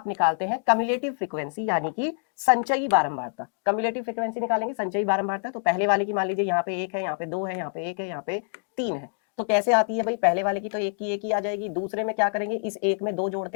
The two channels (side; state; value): right; silent; digital silence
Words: निकालते हैं कम्युलेटिव फ्रीक्वेंसी यानी कि संचयी बारंबारता। कम्युलेटिव फ्रीक्वेंसी निकालेंगे संचयी बारंबारता। तो पहले वाले की मान लीजिए यहाँ पे 1 है, यहाँ पे 2 है, यहाँ पे 1 है, यहाँ पे 3 है, तो कैसे आती है भाई? पहले वाले की तो 1 की 1 ही आ जाएगी, दूसरे में क्या करेंगे? इस 1 में 2 जोड़ते